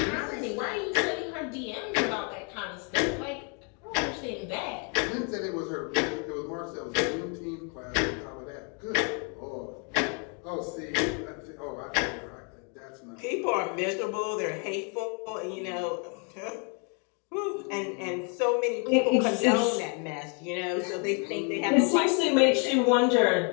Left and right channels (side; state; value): right; quieter; 37.8 dB